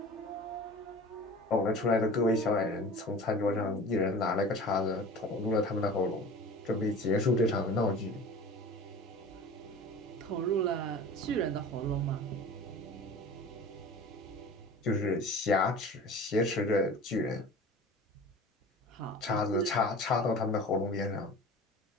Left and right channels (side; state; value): both; normal; correlation 0.39